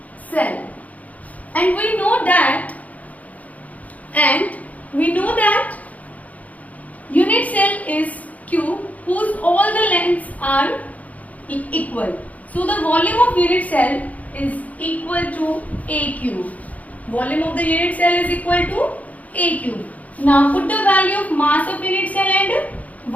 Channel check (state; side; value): late; right; 0.073 ms